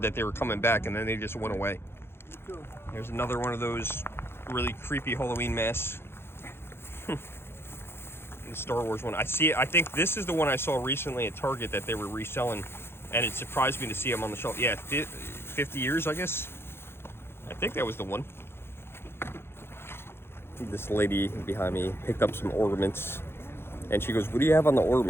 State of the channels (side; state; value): right; late; 0.11 ms